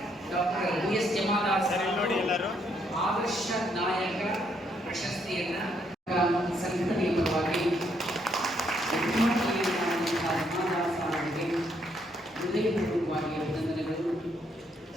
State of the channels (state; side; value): normal; both; correlation 0.73